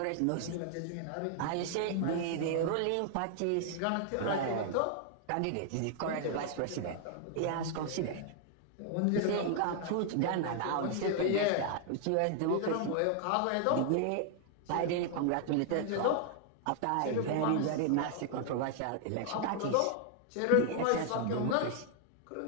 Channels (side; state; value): both; different; correlation 0.00